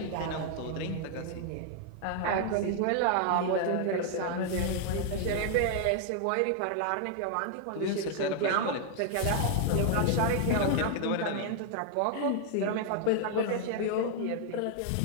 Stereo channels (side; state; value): both; different; correlation 0.00